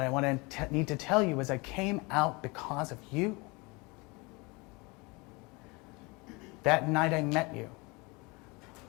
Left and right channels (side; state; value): right; quieter; 26.7 dB